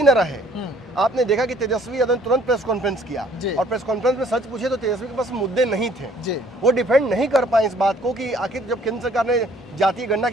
न रहे। आपने देखा कि तेजस्वी यादव ने तुरंत प्रेस कॉन्फ्रेंस किया और प्रेस कॉन्फ्रेंस में सच पूछे तो तेजस्वी के पास मुद्दे नहीं थे। वो डिफेंड नहीं कर पाए इस बात को कि आखिर जब केंद्र सरकार ने जातीय गणना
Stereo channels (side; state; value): both; normal; correlation 0.59